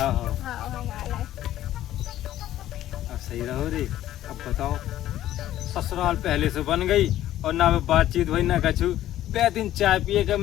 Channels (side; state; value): right; quieter; 13.2 dB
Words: हाँ हाँ हम आला है। अब सही रहो रे। अब बताओ, ससुराल पहले से बन गई और ना बातचीत हुई ना कछु, बे दिन चाय पिए के